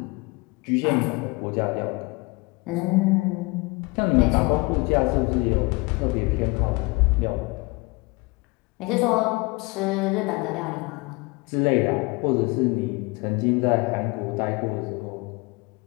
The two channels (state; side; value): quieter; right; 26.3 dB